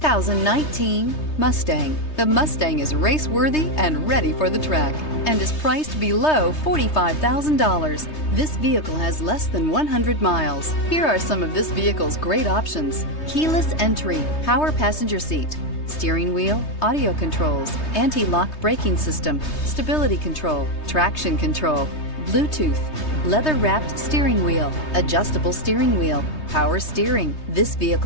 Mustang. The Mustang is race-worthy and ready for the track and is priced below $45,000. This vehicle has less than 100 miles. Here are some of this vehicle's great options: keyless entry, power passenger seat, steering wheel audio controls, anti-lock braking system, stability control, traction control, Bluetooth, leather-wrapped steering wheel, adjustable steering wheel, power steering. This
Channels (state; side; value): late; right; 3.2 ms